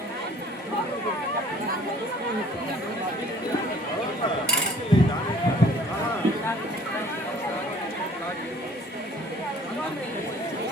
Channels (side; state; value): both; normal; correlation 0.54